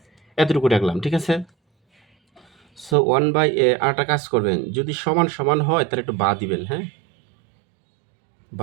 এতটুকু রাখলাম, ঠিক আছে? সো 1/a, আরেকটা কাজ করবেন, যদি সমান সমান হয় তাহলে একটু বা দিবেন, হ্যাঁ,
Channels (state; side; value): drops out; left; at 3.0 s